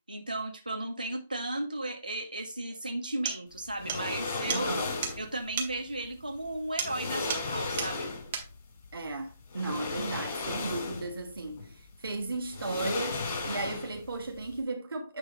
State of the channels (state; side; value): inverted; both; correlation -0.69